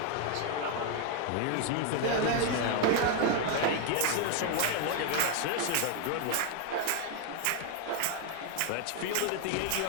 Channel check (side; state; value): both; different; correlation 0.01